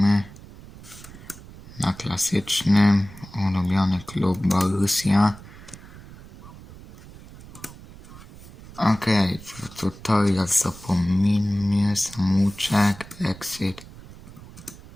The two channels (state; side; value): noise; right; rumble, 18 dB below the sound